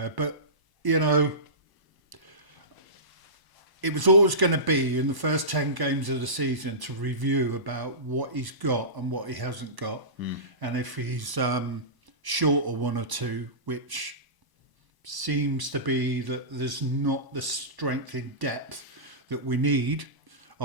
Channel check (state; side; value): late; left; 1.0 ms